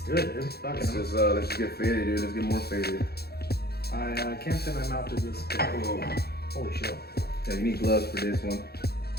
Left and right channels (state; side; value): late; right; 0.46 ms